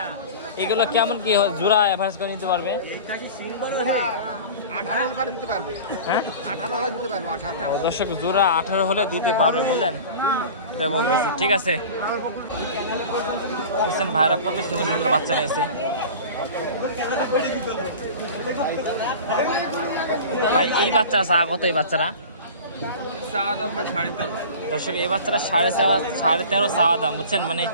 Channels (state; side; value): inverted; both; correlation -0.37